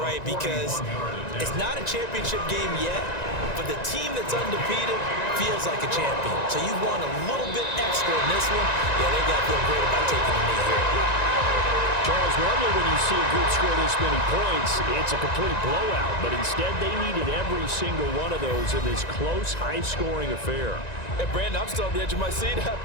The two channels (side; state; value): right; late; 1.9 ms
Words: because it's not a championship game yet, but the team that's undefeated feels like a champion. So you want a little bit extra in this one. Yeah, they got to feel great about taking the knee here. Charles, normally when you see a group score this many points, it's a complete blowout. But instead, they needed every single one of those in this close, high-scoring affair. And Brandon, I'm still on the edge of my seat